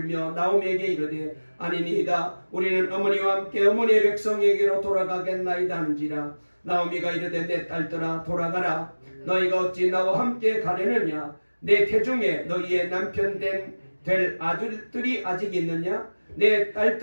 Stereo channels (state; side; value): inverted; both; correlation -1.00